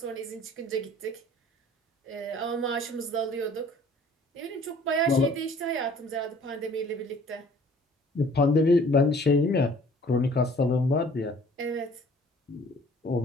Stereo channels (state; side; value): normal; both; correlation 0.53